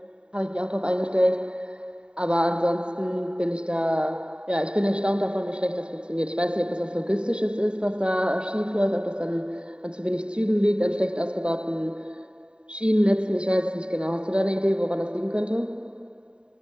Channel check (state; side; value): late; left; 0.050 ms